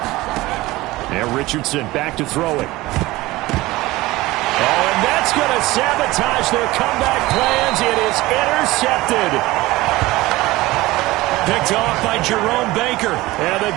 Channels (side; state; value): left; quieter; 19.1 dB